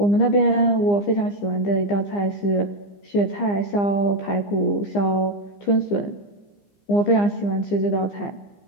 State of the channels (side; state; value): right; late; 15 ms